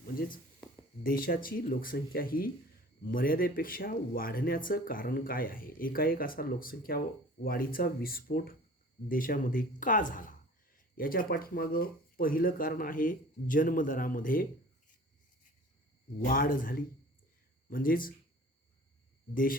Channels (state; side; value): normal; both; correlation 0.45